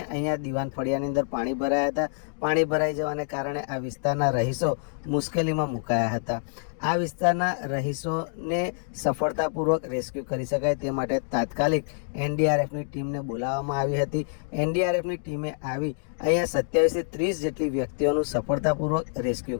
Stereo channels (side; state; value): right; silent; digital silence